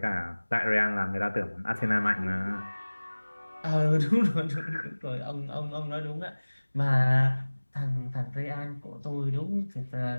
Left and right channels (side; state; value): both; inverted; correlation -1.00